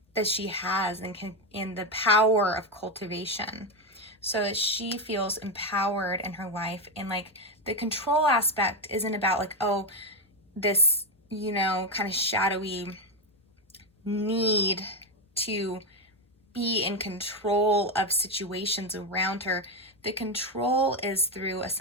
that she has, and in the power of cultivation, so that she feels empowered in her life. And like, the control aspect isn't about like, oh, this, you know, kind of shadowy need to be in control of situations around her. The control is through a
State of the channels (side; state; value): both; normal; correlation 0.09